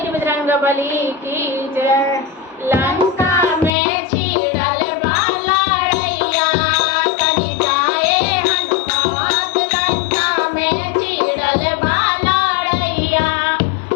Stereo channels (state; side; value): drops out; right; at 3.7 s